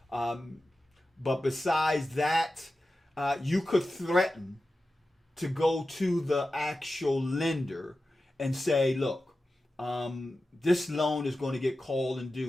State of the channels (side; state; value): both; normal; correlation 0.93